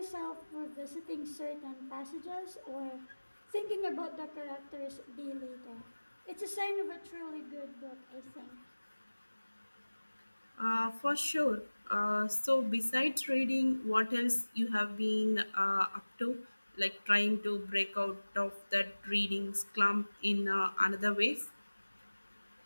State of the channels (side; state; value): both; inverted; correlation -1.00